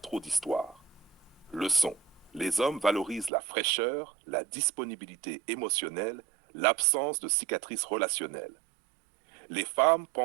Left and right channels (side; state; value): left; drops out; at 3.3 s